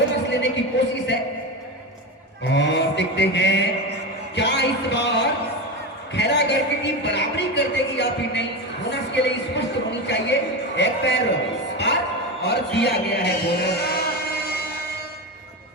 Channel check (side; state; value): both; normal; correlation 0.19